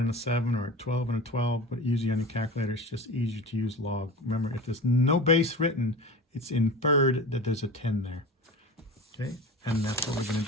a 7 or a 12 and a 12, but usually on your calculator it's just easier to use log. Remember, if there's no base written, it's inferred that there's a 10 there. Okay, and that's what we're going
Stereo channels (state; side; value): normal; both; correlation 0.33